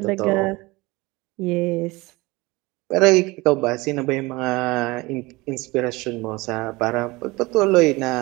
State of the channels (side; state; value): left; quieter; 22.6 dB